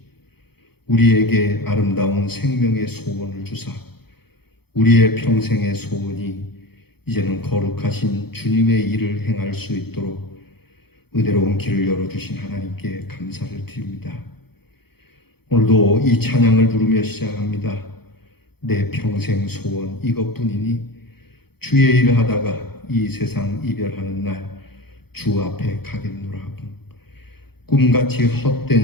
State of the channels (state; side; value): late; right; 0.96 ms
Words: 우리에게 아름다운 생명의 소원을 주사 우리의 평생의 소원이 이제는 거룩하신 주님의 일을 행할 수 있도록 은혜로운 길을 열어주신 하나님께 감사를 드립니다. 오늘도 이 찬양을 부르며 시작합니다. 내 평생 소원 이것뿐이니 주의 일을 하다가 이 세상 이별하는 날 주 앞에 가겠노라 하고 꿈같이